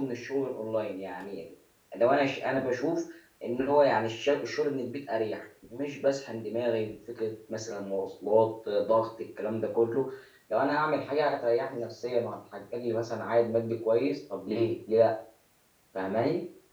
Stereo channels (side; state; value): both; identical; correlation 1.00